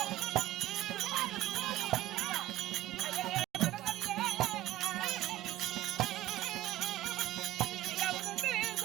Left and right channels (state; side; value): quieter; left; 14.8 dB